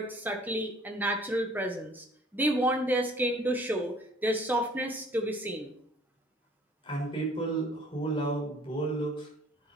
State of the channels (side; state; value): both; normal; correlation 0.54